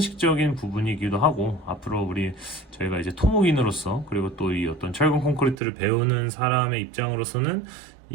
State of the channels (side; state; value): left; drops out; at 5.6 s